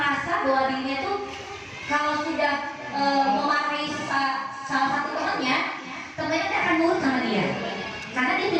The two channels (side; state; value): both; identical; correlation 1.00